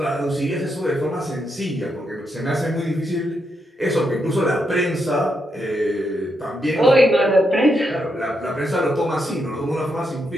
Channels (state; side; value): normal; both; correlation 0.81